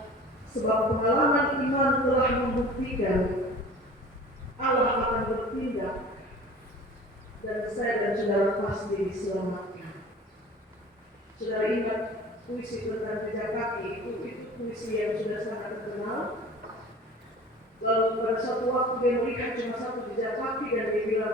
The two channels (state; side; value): normal; both; correlation 0.42